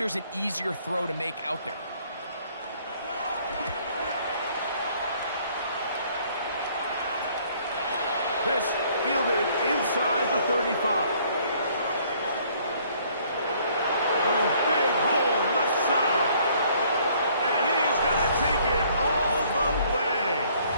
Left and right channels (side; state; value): both; inverted; correlation -0.61